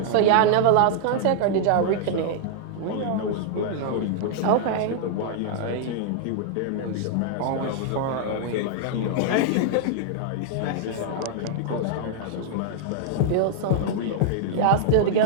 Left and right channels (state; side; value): different; both; correlation -0.01